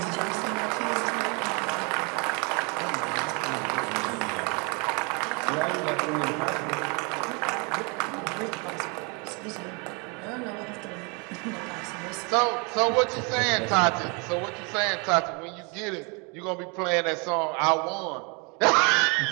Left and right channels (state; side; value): quieter; left; 32.1 dB